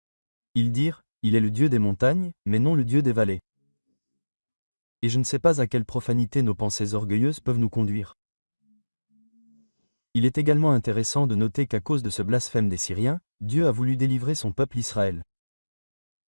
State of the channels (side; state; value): both; inverted; correlation -1.00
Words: Ils dirent, il est le Dieu des montagnes, mais non le Dieu des vallées. Et je ne sais pas à quelle profanité nos pensées orgueilleuses peuvent nous conduire. Il est également intéressant de noter qu'à cause de ce blasphème des Syriens, Dieu a voulu délivrer son peuple Israël.